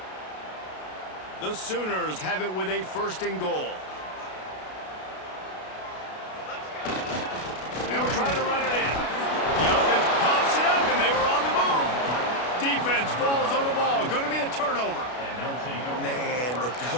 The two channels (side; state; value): right; late; 32 ms